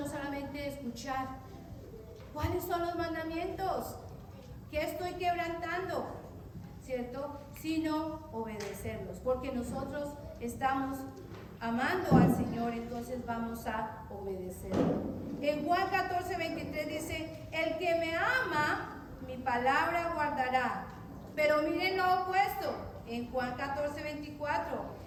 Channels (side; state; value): both; identical; correlation 1.00